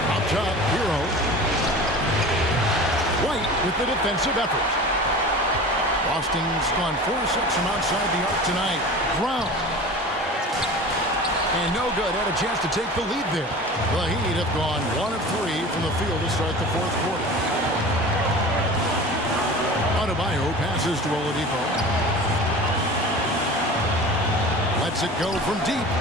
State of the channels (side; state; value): both; normal; correlation 0.37